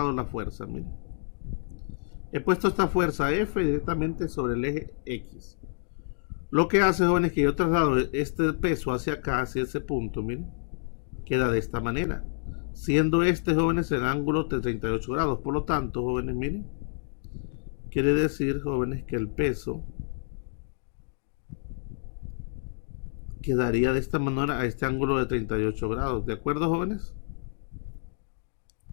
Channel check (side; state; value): right; silent; digital silence